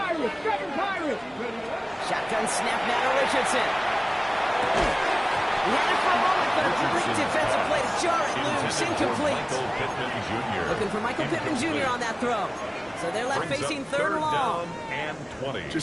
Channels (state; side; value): identical; both; correlation 1.00